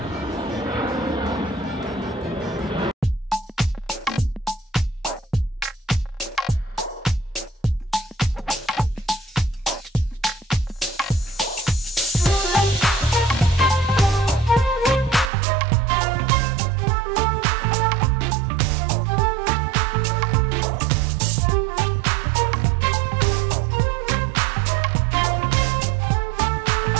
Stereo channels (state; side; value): drops out; left; at 15.3 s